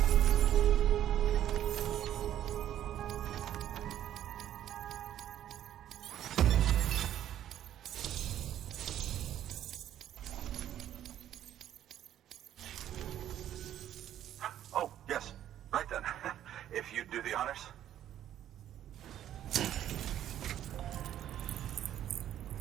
Oh, yes. Right then. If you'd do the honors.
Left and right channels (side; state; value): left; quieter; 11.4 dB